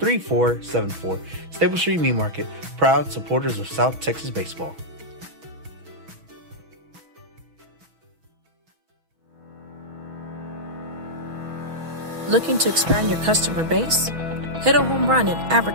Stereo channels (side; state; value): left; late; 6.2 ms